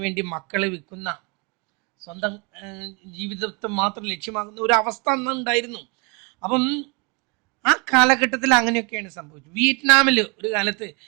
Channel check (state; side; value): quieter; left; 32.1 dB